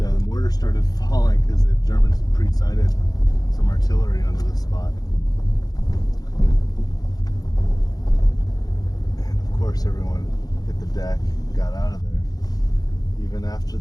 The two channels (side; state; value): right; late; 0.19 ms